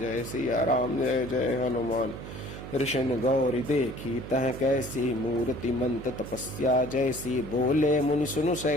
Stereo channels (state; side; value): noise; right; hum, 10 dB below the sound